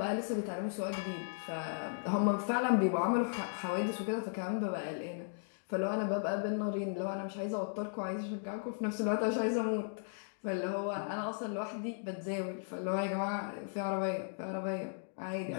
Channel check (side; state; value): right; silent; digital silence